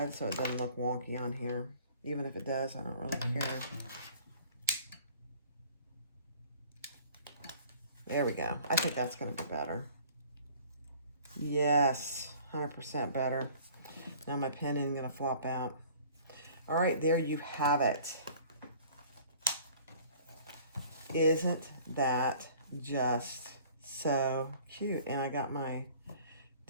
so it doesn't look wonky on here. Even if it does, I don't really care. There we go. I think that's going to be better. Yes, 100% better. Now my pen isn't going to flop out. All right, there you have it. Isn't that just so cute? And I got my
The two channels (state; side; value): inverted; both; correlation -0.50